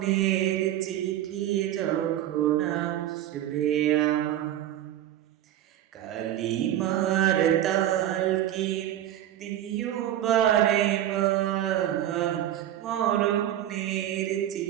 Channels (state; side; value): quieter; left; 12.3 dB